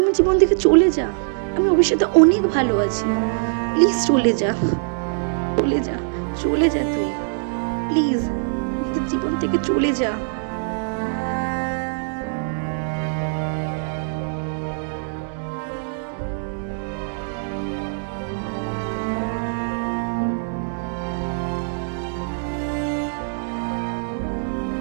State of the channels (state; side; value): silent; left; digital silence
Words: আমার জীবন থেকে চলে যা, আমি ভবিষ্যতে অনেক ভালো আছি। প্লিজ চলে যা, চলে যা, চলে যা তুই, প্লিজ তোর জীবন থেকে চলে যা।